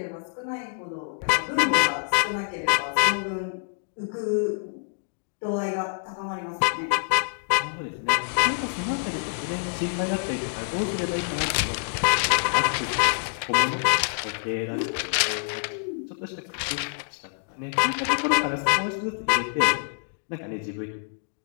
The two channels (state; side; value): silent; right; digital silence